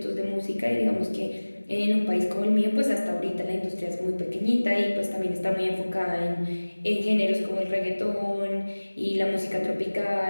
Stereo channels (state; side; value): inverted; both; correlation -1.00